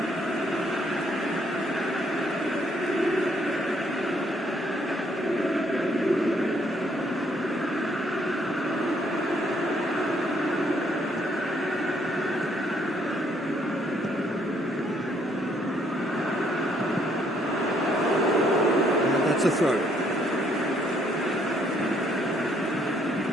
And that's a throw.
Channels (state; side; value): normal; both; correlation 0.69